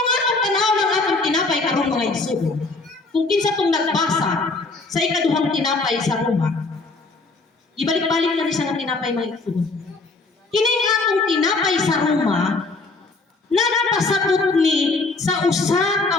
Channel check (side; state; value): right; quieter; 3.6 dB